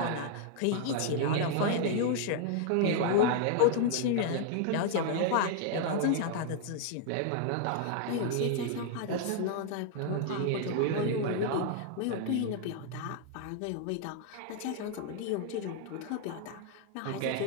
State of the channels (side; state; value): both; different; correlation 0.00